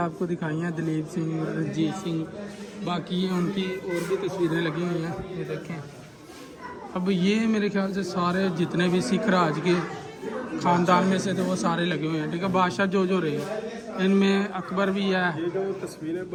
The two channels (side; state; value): both; identical; correlation 1.00